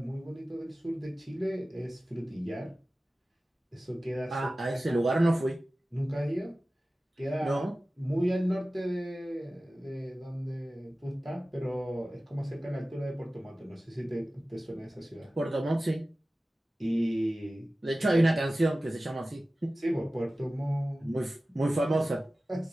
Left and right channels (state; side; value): normal; both; correlation 0.96